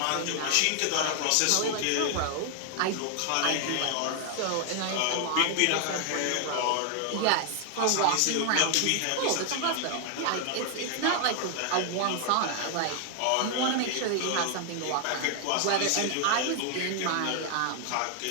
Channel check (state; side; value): different; both; correlation 0.00